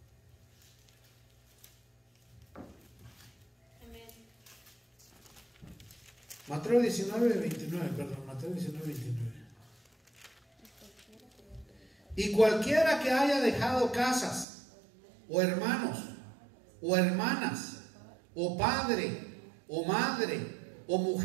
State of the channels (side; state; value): left; drops out; at 14.5 s